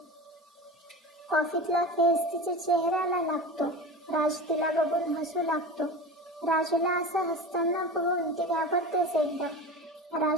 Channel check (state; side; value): normal; both; correlation 0.30